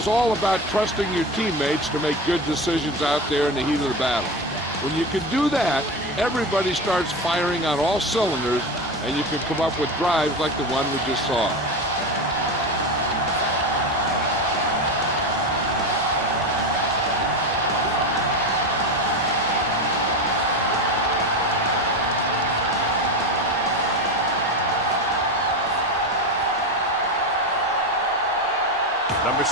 all about trusting your teammates to make good decisions out there in the heat of the battle. When you can do that, everybody starts firing on all cylinders, and you can come up with drives like the one we just saw. Number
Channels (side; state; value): both; normal; correlation 0.21